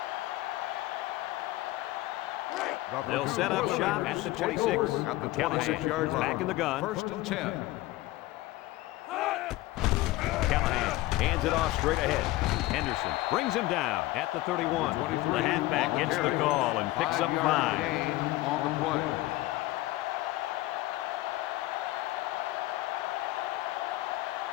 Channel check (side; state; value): right; quieter; 17.8 dB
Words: They'll set up shop at the 26. At the Callahan 26-yard is line. back in the gun. 1st and 10. Callahan hands it off straight ahead. Henderson brings him down at the 31. The halfback gets the call and picks up 5. Gain on the play.